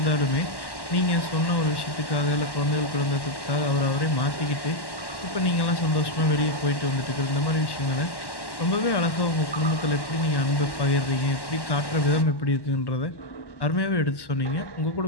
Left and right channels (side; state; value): right; late; 1.1 ms